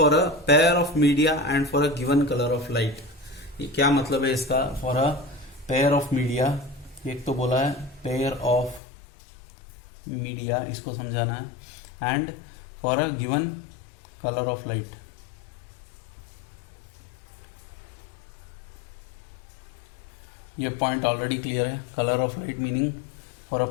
a pair of media and for a given color of light. ये क्या मतलब है इसका? For a pair of media, एक तो बोला है pair of media, इसको समझाना है, and for a given color of light. ये पॉइंट ऑलरेडी क्लियर है. Colour of light meaning for a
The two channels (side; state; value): right; drops out; at 8.8 s